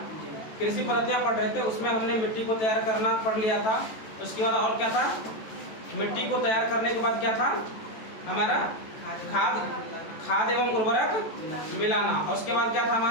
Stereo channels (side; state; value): right; late; 14 ms